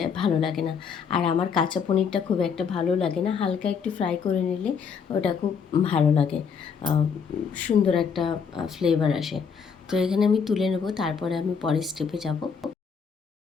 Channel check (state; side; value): quieter; right; 6.3 dB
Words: ভালো লাগে না। আর আমার কাঁচা পনিরটা খুব একটা ভালো লাগে না, হালকা একটু ফ্রাই করে নিলে ওটা খুব ভালো লাগে, সুন্দর একটা ফ্লেভার আসে। তো এখানে আমি তুলে নেব, তারপরে আমি পরের স্টেপে যাব।